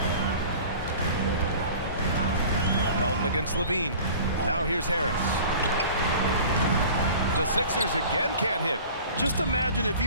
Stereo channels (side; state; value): both; inverted; correlation -0.43